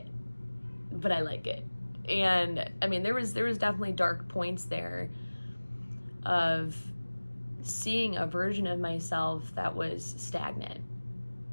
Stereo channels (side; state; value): both; inverted; correlation -1.00